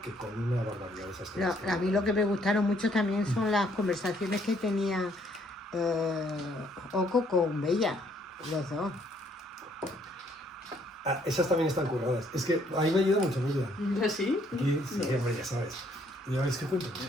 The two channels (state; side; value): normal; both; correlation 0.66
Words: que con una barbaridad de esas cosas. A mí lo que me gustaron mucho también son las conversaciones que tenía Oco con Bella, los dos. Esas también están curradas. Es que ahí me ayuda mucho Bella. ¿Sí? Sí, hombre, ya sabes. Ya veis que cuento.